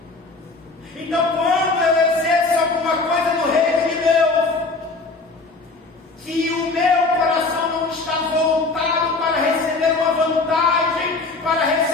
Então, quando eu exerço alguma coisa no reino de Deus, que o meu coração não está voltado para receber uma vantagem, para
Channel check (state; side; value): quieter; right; 3.7 dB